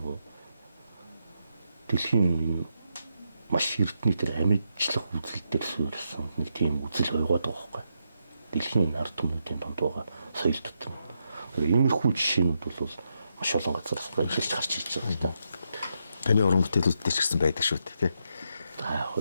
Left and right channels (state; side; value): inverted; both; correlation -0.82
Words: дэлхийн маш эрдний тэр амьдлах үзэл дээр суурьсан нэг тийм үзэл байгаад байгаа байхгүй. Дэлхийн ард түмнүүдийн донд байгаа соёл дотор. Иймэрхүү жишээнүүд бол маш олон газараас эхэлж гарч ирж байгаа юм да. Таны уран бүтээлүүд дээр ч гэсэн байдаг шүү дээ, тий. За яг